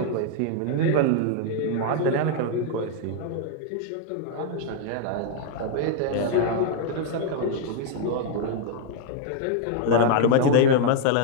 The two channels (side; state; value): both; different; correlation 0.00